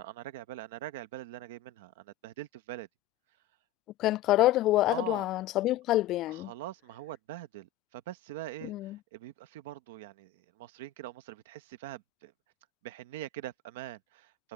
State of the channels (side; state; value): right; quieter; 9.7 dB